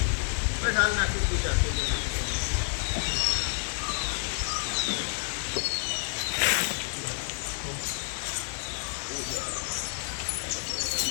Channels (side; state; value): right; silent; 57 dB below the other